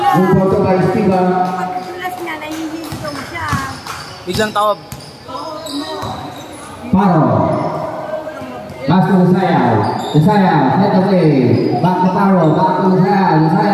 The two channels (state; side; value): identical; both; correlation 1.00